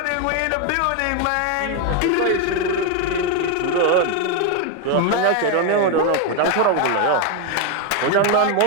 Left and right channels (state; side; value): different; both; correlation 0.01